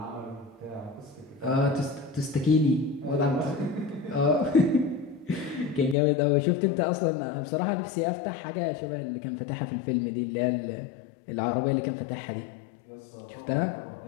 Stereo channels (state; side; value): drops out; right; at 6.0 s